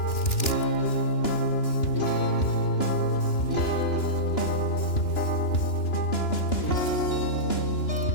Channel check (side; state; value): right; late; 2.9 ms